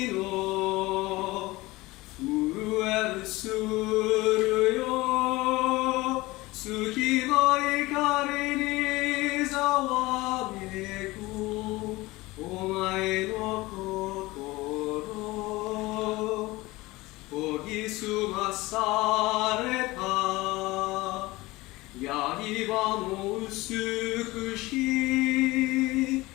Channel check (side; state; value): right; quieter; 20.6 dB